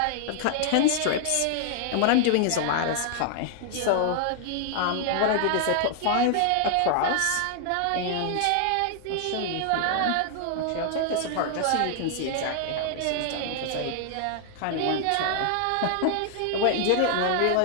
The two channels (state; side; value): different; both; correlation 0.00